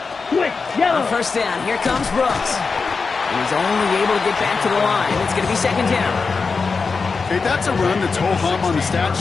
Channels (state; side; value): quieter; right; 4.7 dB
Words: Switch, yellow. On first down, here comes Brooks. And he's only able to get back to the line. It's going to be 2nd down. Okay, that's a run that's ho-hum on the stat